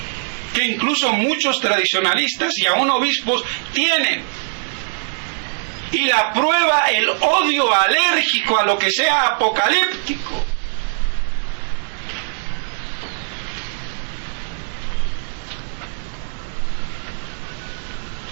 que incluso muchos tradicionalistas y aún obispos tienen. Y la prueba, el odio alérgico a lo que sea apocalíptico.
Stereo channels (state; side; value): silent; left; digital silence